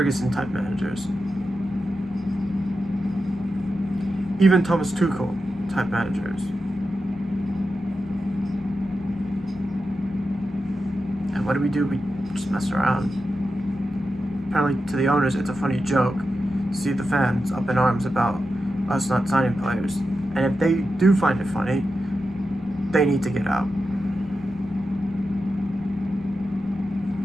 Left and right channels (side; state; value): both; normal; correlation 0.90